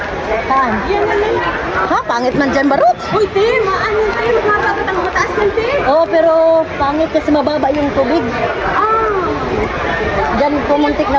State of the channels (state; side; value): identical; both; correlation 1.00